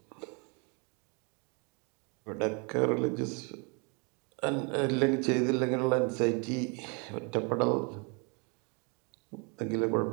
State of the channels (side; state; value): left; quieter; 33.7 dB